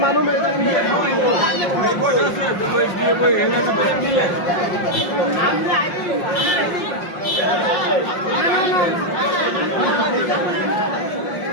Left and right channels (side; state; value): right; late; 5.6 ms